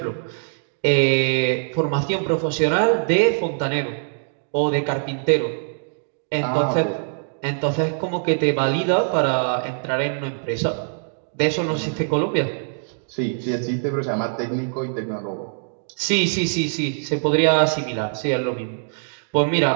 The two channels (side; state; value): left; silent; digital silence